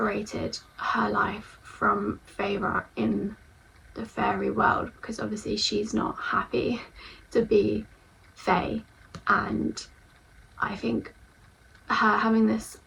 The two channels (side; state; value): both; identical; correlation 1.00